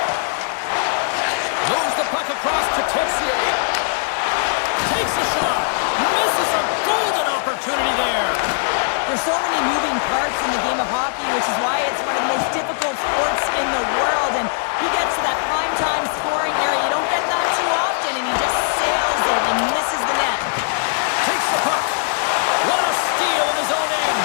Moves the puck across to Texier. Takes a shot. Misses a golden opportunity there. There's so many moving parts in the game of hockey, which is why it's one of the most difficult sports in the world. And he gets to that prime-time scoring area. You don't get that too often, and he just sails it and misses the net. Takes the puck. What a steal in his own end.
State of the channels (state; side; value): silent; right; 66 dB below the other